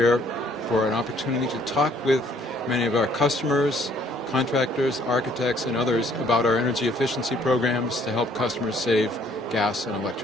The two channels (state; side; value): normal; both; correlation 0.62